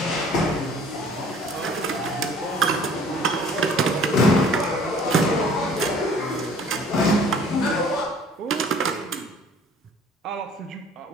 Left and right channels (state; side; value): normal; both; correlation 0.52